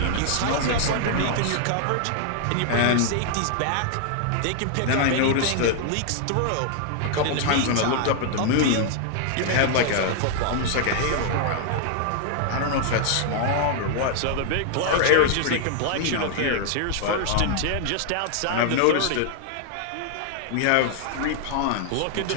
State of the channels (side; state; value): both; different; correlation 0.00